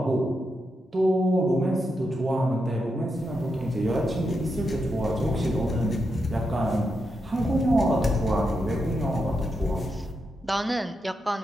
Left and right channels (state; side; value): normal; both; correlation 0.85